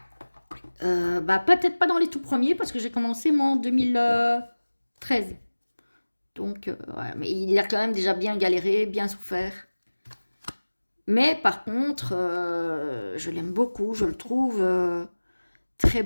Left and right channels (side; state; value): both; inverted; correlation -1.00